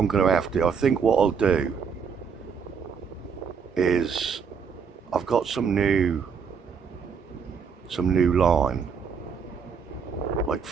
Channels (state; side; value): quieter; left; 6.3 dB